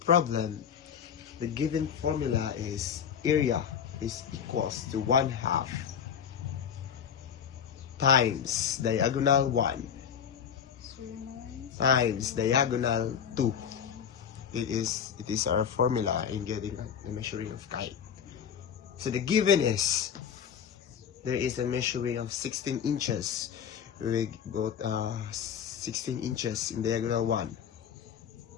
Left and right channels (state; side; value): quieter; right; 8.1 dB